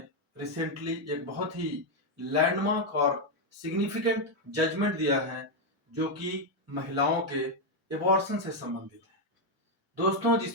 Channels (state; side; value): normal; both; correlation 0.02